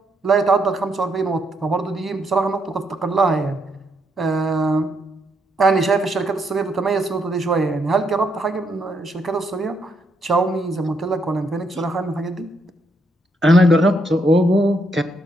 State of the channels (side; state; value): both; normal; correlation 0.76